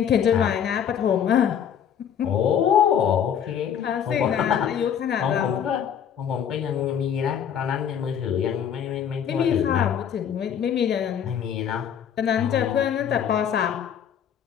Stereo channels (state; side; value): quieter; right; 8.5 dB